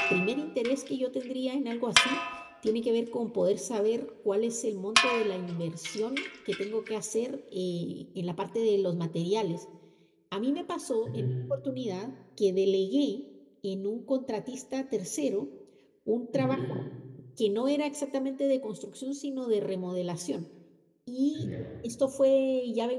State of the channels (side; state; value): both; identical; correlation 1.00